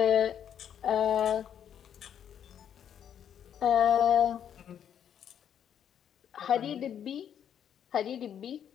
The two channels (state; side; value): quieter; right; 9.1 dB